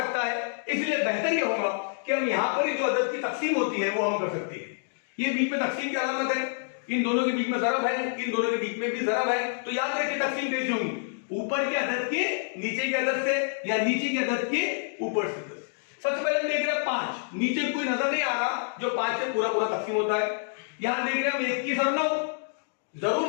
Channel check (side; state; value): right; silent; digital silence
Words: है। इसलिए बेहतर यह होगा कि हम यहां पर जो अदद की तक़सीम होती है वो हम कर सकते हैं। ये बीच में तक़सीम की अलामत है, इन दोनों के बीच में ज़रब है, इन दोनों के बीच में भी ज़रब है। तो याद रखिए तक़सीम कैसी होगी? ऊपर के अदद के नीचे के अदद से, या नीचे के अदद के ऊपर से। सबसे पहले हम देख रहे हैं 5, नीचे कोई नजर नहीं आ रहा जो 5 से पूरा पूरा तक़सीम होता है। यहां देख रहे हैं हम 21 और 9, जरूर